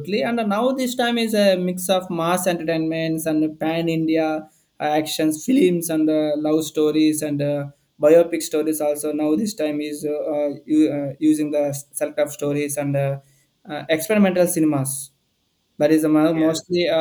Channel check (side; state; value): both; identical; correlation 1.00